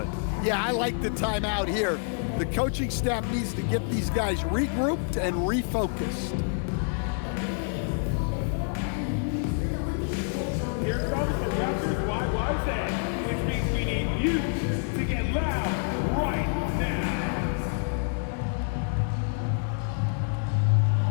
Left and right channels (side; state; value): right; silent; 60 dB below the other